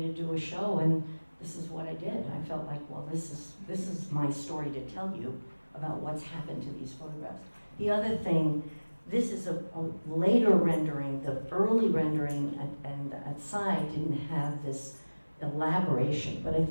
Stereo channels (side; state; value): both; inverted; correlation -1.00